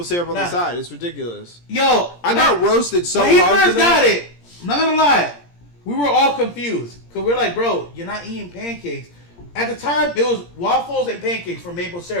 syrup on the side. It's ridiculous. Yo, I got roasted so hard. When he first got it, I'm not gonna lie, we were all confused because we're like, bro, you're not eating pancakes. At the time, it was waffles and pancakes for maple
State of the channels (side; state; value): right; late; 17 ms